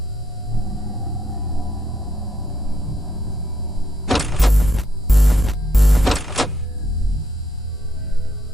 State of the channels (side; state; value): both; normal; correlation 0.75